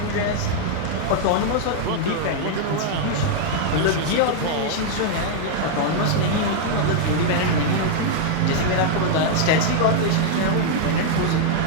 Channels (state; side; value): different; both; correlation -0.01